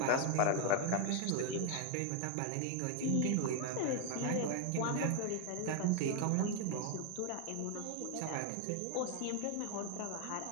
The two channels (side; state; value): both; different; correlation 0.01